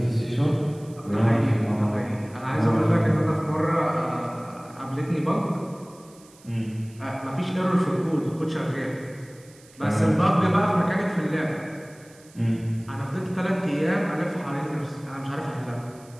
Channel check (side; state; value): right; noise; hiss, 26 dB below the sound